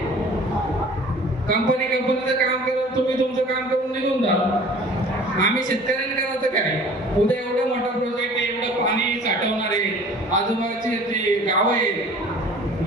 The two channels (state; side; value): normal; both; correlation 0.47